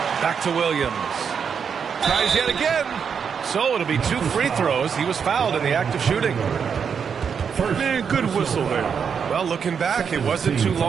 Back to Williams. Tries yet again. So it'll be 2 free throws. He was fouled in the act of shooting. Man, good whistle there. Well, looking back, it wasn't too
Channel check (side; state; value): left; quieter; 6.8 dB